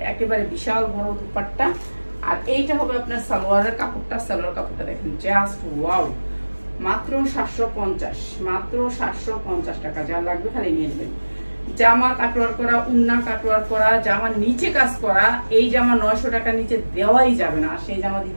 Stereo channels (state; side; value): inverted; both; correlation -1.00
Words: একেবারে বিশাল বড় দুপাট্টা। আর এইটা হবে আপনার সালোয়ারের কাপড়টা। সালোয়ার কাপড়টা দেখেন, জাস্ট ওয়াও, মাত্র 750, মাত্র 750 টাকা। যা লাগবে খালি নিয়ে নেবেন। জামা কাটওয়ার করা, উন্না কাটওয়ার করা, জামার নিচে কাজ করা। এই জামা 900 টাকা নিচে দেওয়াই যাবে না, সেই জামা